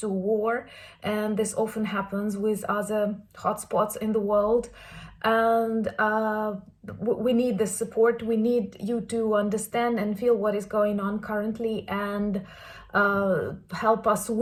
war, and this often happens with other hotspots in the world. And we need the support. We need you to understand and feel what is going on currently, and help us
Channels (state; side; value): identical; both; correlation 1.00